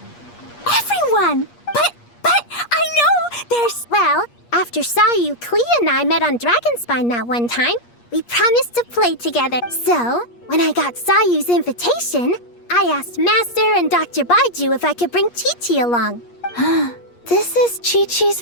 Everyone! But I know there's... Well, after Sayu, Klee, and I met on Dragonspine that one time, we promised to play together. So, when I got Sayu's invitation, I asked Master and Dr. Baiju if I could bring Chi-Chi along. This is Chi-Chi's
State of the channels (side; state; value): right; late; 8.4 ms